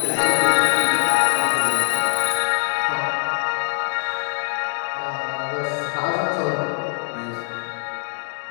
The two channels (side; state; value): right; silent; digital silence